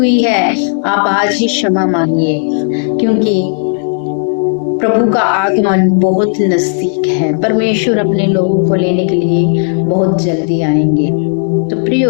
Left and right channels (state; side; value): silent; right; digital silence